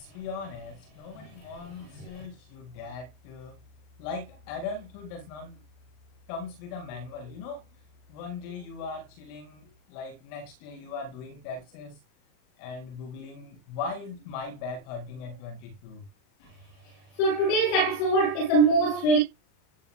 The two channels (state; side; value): late; right; 40 ms